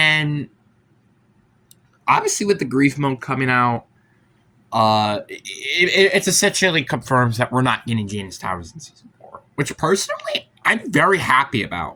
obviously with the grief mode coming out, it's essentially confirms that we're not getting Janus Towers in Season 4. Which personally, I'm very happy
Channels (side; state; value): both; identical; correlation 1.00